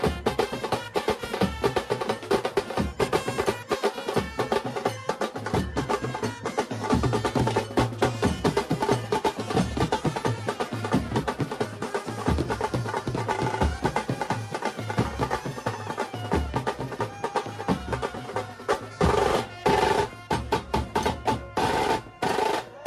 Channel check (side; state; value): both; identical; correlation 1.00